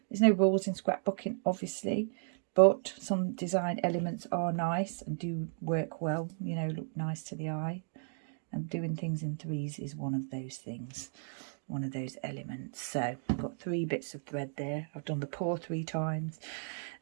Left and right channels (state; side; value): silent; left; digital silence